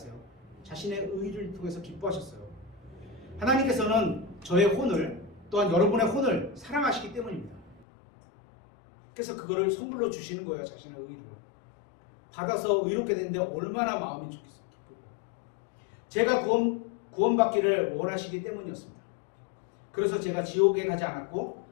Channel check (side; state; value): right; drops out; at 7.9 s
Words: 자신의 의를 통해서 기뻐하셨어요. 하나님께서는 저의 혼을 또한 여러분의 혼을 사랑하시기 때문입니다. 그래서 그거를 선물로 주시는 거예요. 자신의 의를 받아서 의롭게 되는데 얼마나 마음이 좋겠어요. 기쁘고. 제가 구원받기를 원하시기 때문이었습니다. 그래서 제가 지옥에 가지 않았고